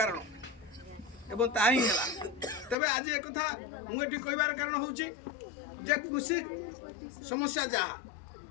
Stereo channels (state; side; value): drops out; right; at 2.8 s